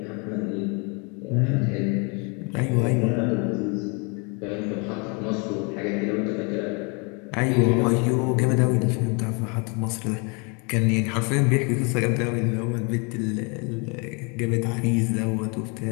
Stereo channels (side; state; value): right; quieter; 32.7 dB